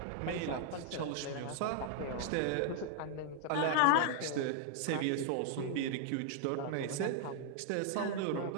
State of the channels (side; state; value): both; different; correlation 0.00